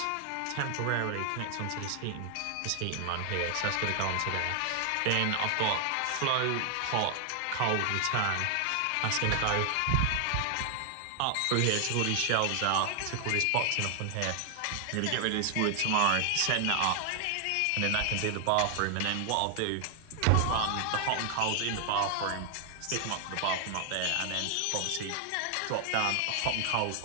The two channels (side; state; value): both; different; correlation 0.00